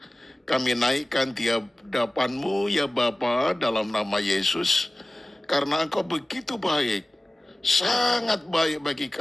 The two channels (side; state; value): both; normal; correlation 0.97